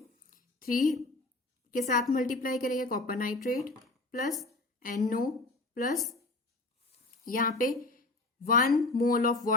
3 के साथ मल्टीप्लाई करेंगे copper nitrate plus NO plus यहाँ पे 1 mole of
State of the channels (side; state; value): right; quieter; 3.0 dB